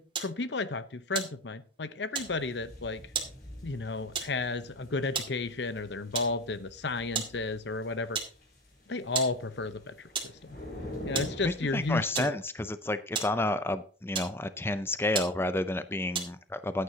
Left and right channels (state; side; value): normal; both; correlation 0.32